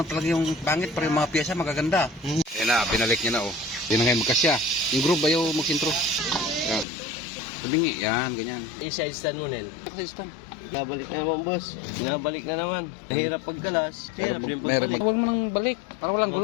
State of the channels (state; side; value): drops out; right; at 6.9 s